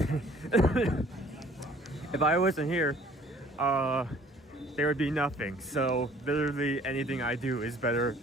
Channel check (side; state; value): both; normal; correlation 0.55